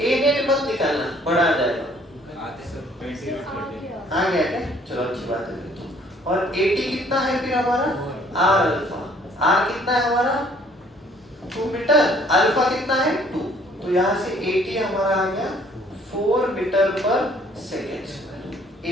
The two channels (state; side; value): normal; both; correlation 0.60